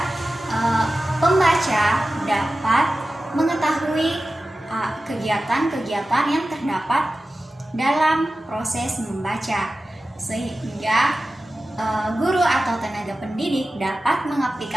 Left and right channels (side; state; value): both; normal; correlation 0.94